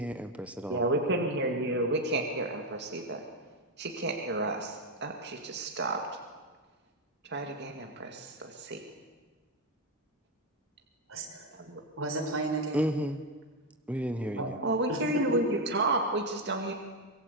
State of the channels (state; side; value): normal; both; correlation 0.06